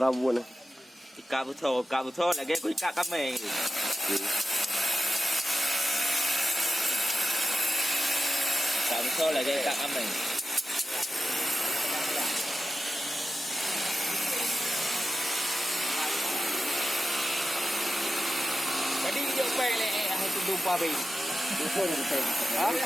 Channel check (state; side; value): normal; both; correlation 0.92